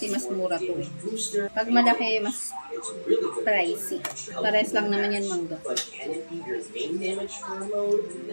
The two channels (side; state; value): both; inverted; correlation -1.00